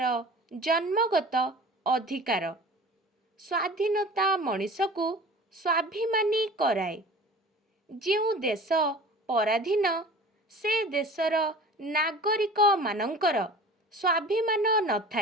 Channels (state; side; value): normal; both; correlation 0.41